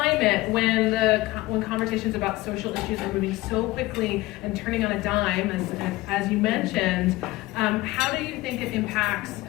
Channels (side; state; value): right; quieter; 19.1 dB